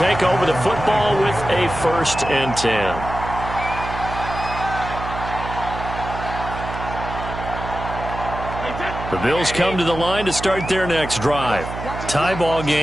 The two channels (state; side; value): noise; right; hum, 8 dB below the sound